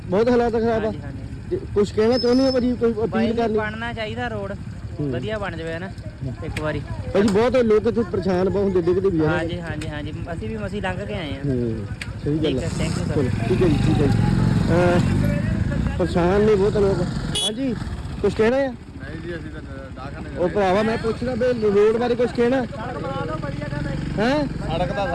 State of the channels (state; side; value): identical; both; correlation 1.00